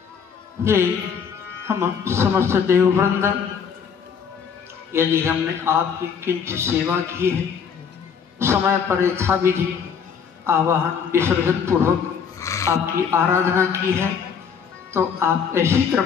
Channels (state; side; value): quieter; right; 6.9 dB